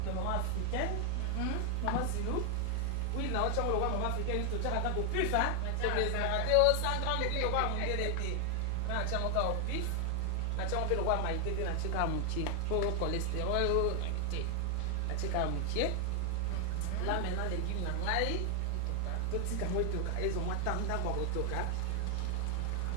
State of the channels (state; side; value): different; both; correlation 0.00